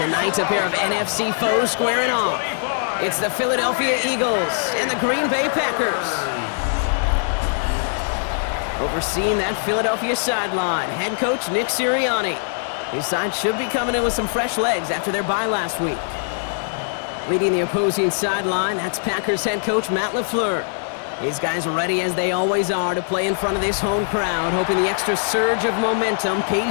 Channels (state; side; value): silent; right; digital silence